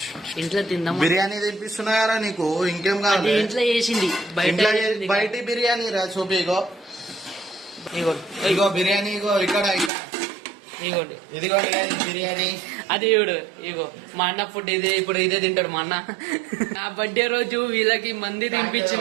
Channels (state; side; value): drops out; left; at 9.9 s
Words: ఇంట్లో తిందాం. బిర్యానీ తినిపిస్తున్నారా నీకు? ఇంకేం కావాలి? ఇంట్లో చేసింది, బయట బిర్యానీ రా. చూపి, ఇగో ఇగో బిర్యానీ. ఇగో ఇక్కడ ఇగోండి, ఇదిగో బిర్యానీ. అది ఇవిడు. ఇగో మా అన్న ఫుడ్ ఇదే. ఇప్పుడు ఇదే తింటాడు మా అన్న. నా బర్త్డే రోజు వీళ్ళకి మంది